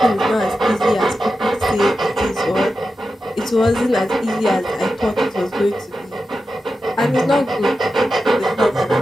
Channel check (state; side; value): normal; both; correlation 0.91